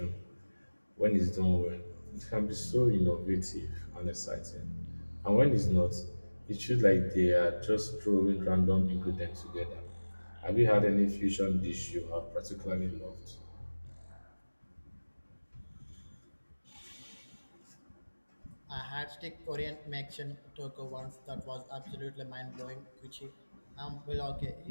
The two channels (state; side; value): inverted; both; correlation -1.00